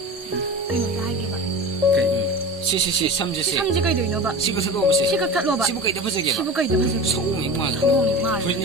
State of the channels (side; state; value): both; normal; correlation 0.32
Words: Belum tahu lagi, Pak. Si 삼지시. 삼지가 있는 봐. 시부터 가보시. 시각 탓로 봐. 시부가 있다 보세요. 시부가 있다 보세요. 소음이 뭐. 소음이 뭐.